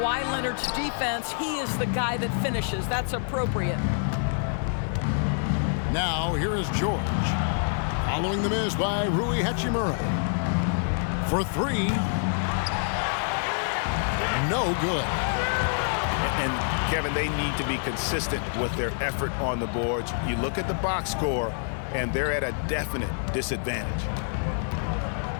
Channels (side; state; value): right; silent; digital silence